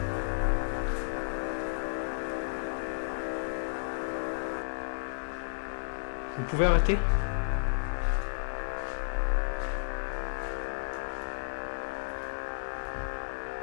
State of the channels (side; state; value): right; silent; digital silence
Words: Vous pouvez arrêter?